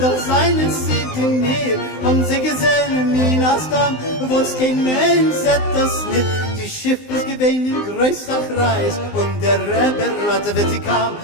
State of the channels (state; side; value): late; right; 19 ms